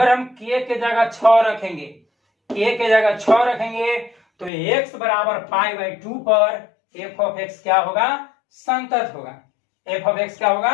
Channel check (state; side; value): drops out; right; at 4.5 s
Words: हम k के जगह 6 रखेंगे, k के जगह 6 रखेंगे तो x बराबर π/2 पर f ऑफ x क्या होगा, संतत होगा। f ऑफ x क्या